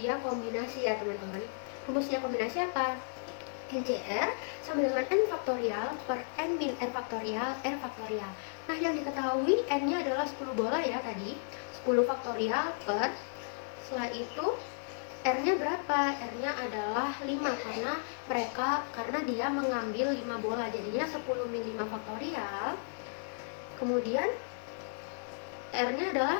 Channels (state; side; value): silent; right; digital silence